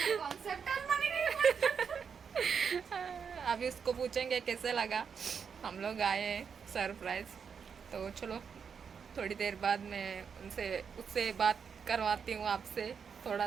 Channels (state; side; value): quieter; left; 6.6 dB